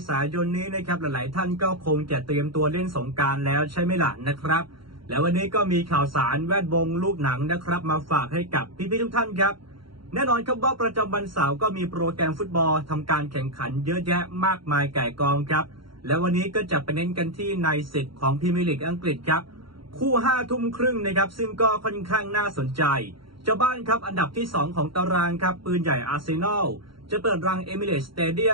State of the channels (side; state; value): left; late; 0.73 ms